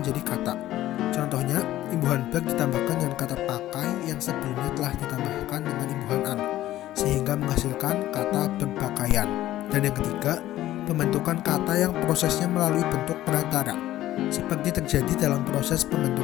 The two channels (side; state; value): right; quieter; 14.4 dB